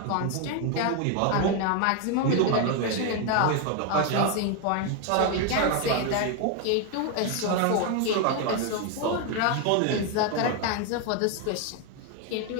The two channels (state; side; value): different; both; correlation 0.01